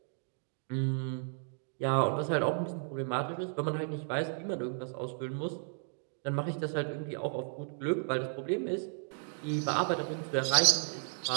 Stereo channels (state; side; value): silent; left; 55 dB below the other